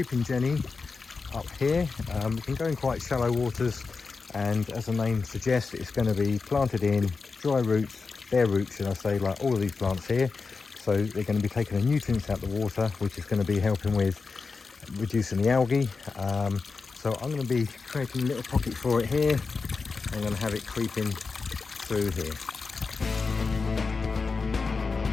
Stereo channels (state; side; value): quieter; right; 4.5 dB